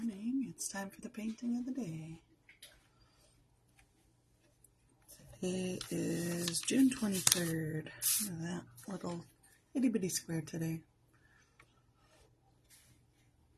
It's time for the painting of the day. Today is June 23rd. Look at that little itty bitty square today.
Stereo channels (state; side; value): identical; both; correlation 1.00